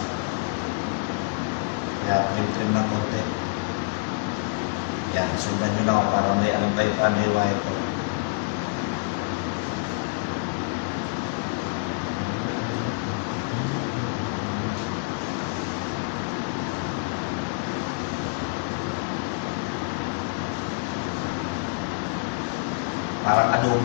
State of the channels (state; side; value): quieter; right; 29.8 dB